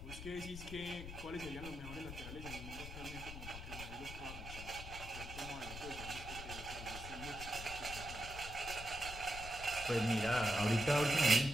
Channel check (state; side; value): noise; left; rumble, 10 dB below the sound